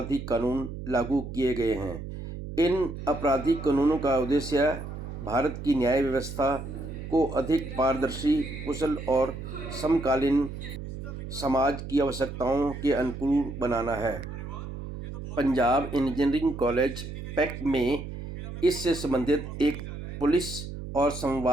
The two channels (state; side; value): noise; right; hum, 9 dB below the sound